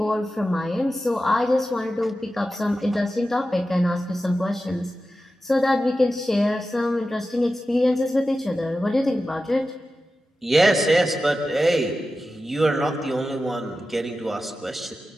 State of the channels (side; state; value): both; normal; correlation 0.93